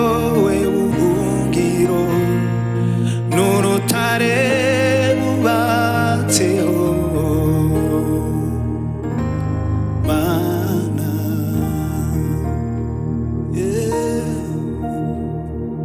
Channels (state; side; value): identical; both; correlation 1.00